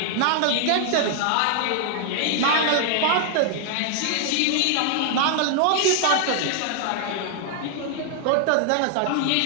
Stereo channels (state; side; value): different; both; correlation 0.00